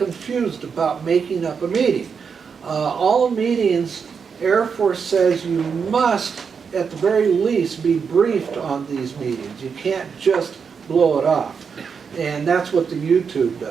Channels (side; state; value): left; quieter; 6.1 dB